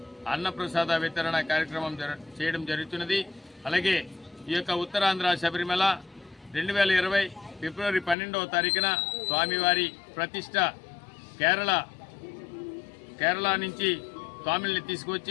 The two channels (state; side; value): drops out; right; at 8.2 s